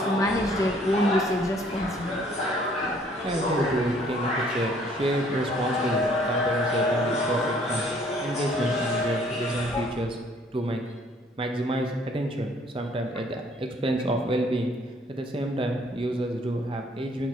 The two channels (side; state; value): both; normal; correlation 0.60